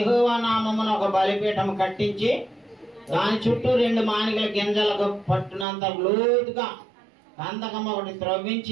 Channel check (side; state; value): left; drops out; at 5.7 s